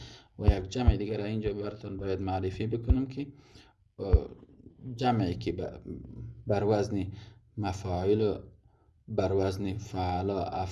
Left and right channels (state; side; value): identical; both; correlation 1.00